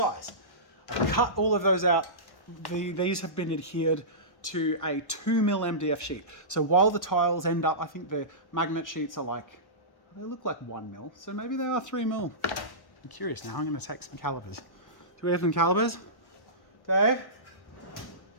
I cut all of those out. These have been adhered to a 2 mil MDF sheet. So while the tiles end up, I think the magnet sheets are like, they look like 1 mil. So maybe they are 3 mil. I'm curious now. I'm going to take some calipers. Do we have some calipers? Dave?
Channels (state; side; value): late; right; 1.1 ms